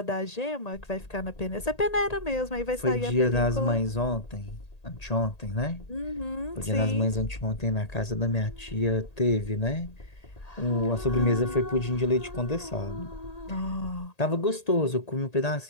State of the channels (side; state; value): right; late; 1.8 ms